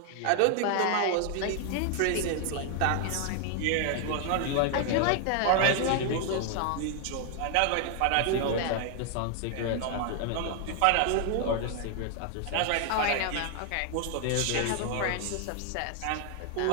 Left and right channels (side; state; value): both; different; correlation 0.00